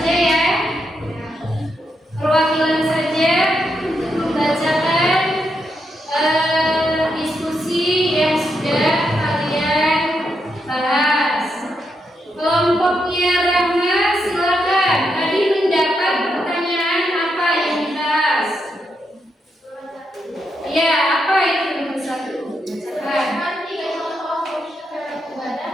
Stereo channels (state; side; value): normal; both; correlation 0.82